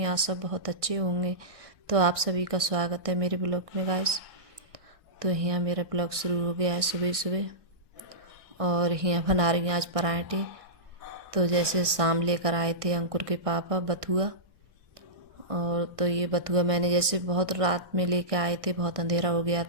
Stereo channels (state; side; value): late; left; 1.6 ms